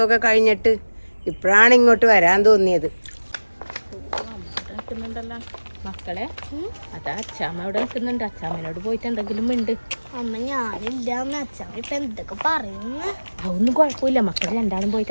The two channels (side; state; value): both; inverted; correlation -1.00